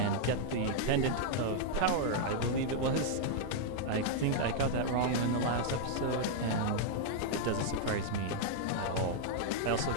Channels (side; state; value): both; different; correlation -0.01